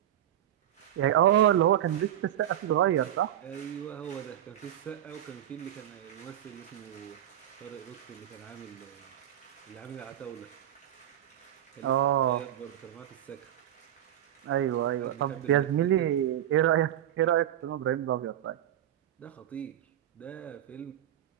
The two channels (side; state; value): left; quieter; 11.6 dB